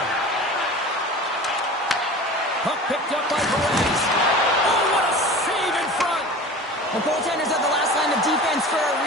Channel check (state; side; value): normal; both; correlation 0.37